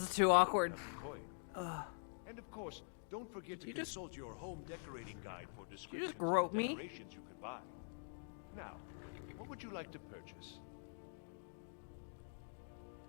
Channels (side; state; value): right; silent; digital silence